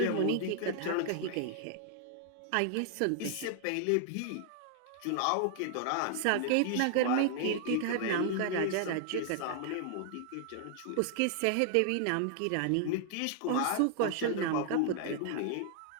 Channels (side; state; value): both; different; correlation 0.00